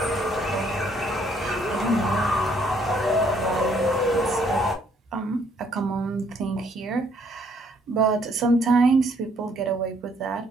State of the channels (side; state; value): both; normal; correlation 0.66